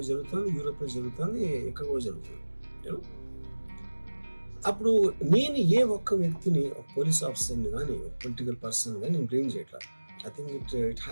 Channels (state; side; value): inverted; both; correlation -1.00